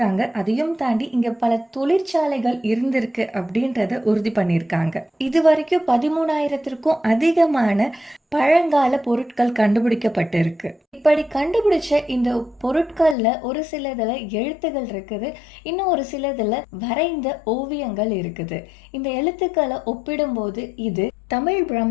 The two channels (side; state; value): right; drops out; at 13.2 s